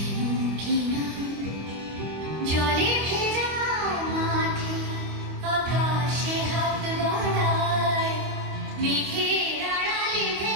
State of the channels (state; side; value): late; left; 25 ms